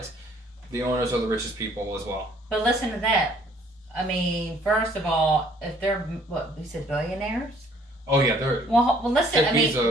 The owners are the richest people as well. But listen to that. I mean, first of all, if they're you said billionaires? Oh yeah, they're. Well, listen. I mean,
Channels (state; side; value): normal; both; correlation 0.60